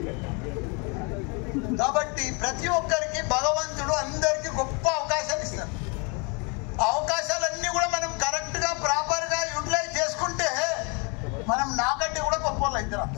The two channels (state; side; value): quieter; right; 32.8 dB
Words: కాబట్టి ప్రతి ఒక్కరికి భగవంతుడు అందరికి గొప్ప అవకాశాలు ఇస్తారు. ఆ అవకాశాలన్నీ కూడా మనం కరెక్ట్ గా ప్రాపర్ గా యూటిలైజ్ చేసుకుంటే మనం నాకంటే కూడా గొప్ప వాళ్ళు అవుతారు